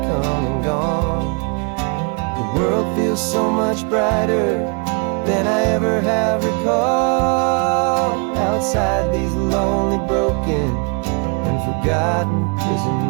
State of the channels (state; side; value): quieter; left; 36.2 dB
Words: come and gone. The world feels so much brighter than I ever have recalled. Outside these lonely, broken, and forgotten